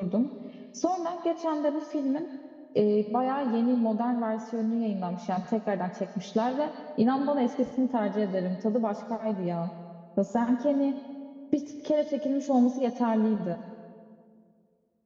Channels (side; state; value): both; identical; correlation 1.00